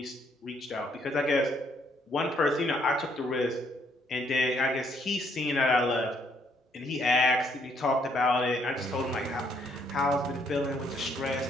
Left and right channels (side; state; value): both; normal; correlation 0.69